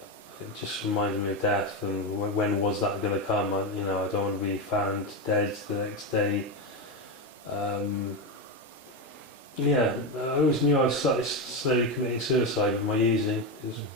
It just reminded me of death, and when was that going to come? I don't want to be found dead the next day. I always knew I was slowly committing suicide with my using.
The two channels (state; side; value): normal; both; correlation 0.12